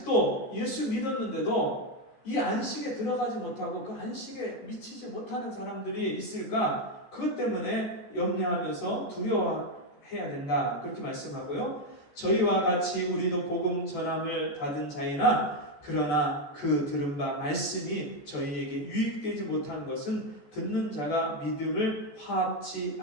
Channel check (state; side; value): late; right; 14 ms